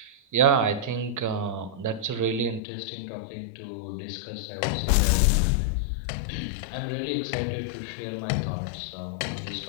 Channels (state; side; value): drops out; right; at 2.6 s